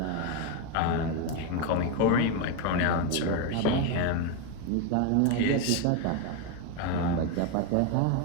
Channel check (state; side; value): different; both; correlation 0.02